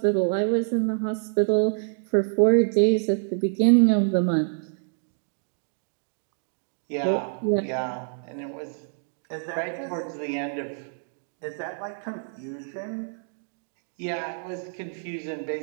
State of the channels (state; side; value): silent; left; digital silence